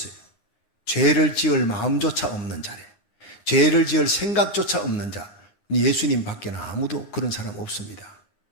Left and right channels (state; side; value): late; right; 9.7 ms